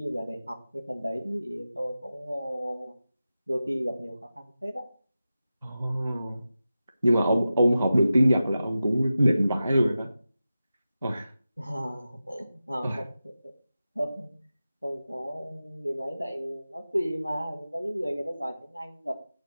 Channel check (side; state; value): both; inverted; correlation -0.93